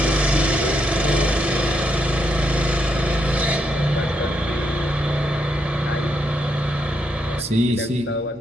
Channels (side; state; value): both; normal; correlation 0.78